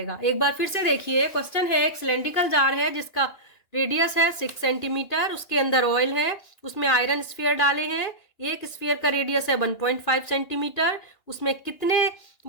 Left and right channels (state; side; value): late; right; 2.9 ms